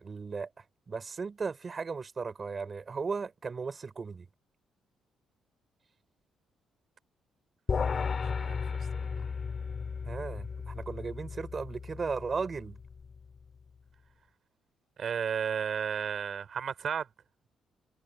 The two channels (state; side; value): normal; both; correlation 0.84